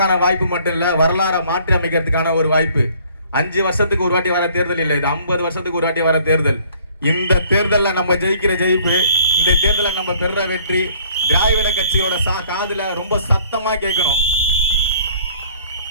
வாய்ப்பு மட்டும் இல்ல, வரலாறை மாற்றி அமைக்கிறதுக்கான ஒரு வாய்ப்பு. 5 வருஷத்துக்கு ஒரு வாட்டி வர தேர்தல் இல்லை, இது 50 வருஷத்துக்கு ஒரு வாட்டி வர தேர்தல். இந்த தேர்தலில் நம்ம ஜெயிக்கிற ஜெயிப்பு, இந்த தேர்தலில் நம்ம பெற வெற்றி திராவிட கட்சியோட காதுல ரொம்ப சத்தமா கேட்கணும்.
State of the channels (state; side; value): inverted; both; correlation -0.58